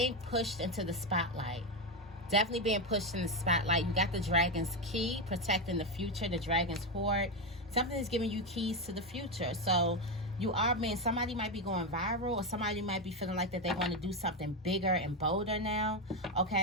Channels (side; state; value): both; normal; correlation 0.10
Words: pushed into the spotlight. Definitely being pushed in the spotlight. You got the dragon's key, protecting the future, the dragon's hoard. Something is giving you keys to the future. So you are being, somebody might be going viral, or somebody might be feeling like that they want to do something bigger and bolder now,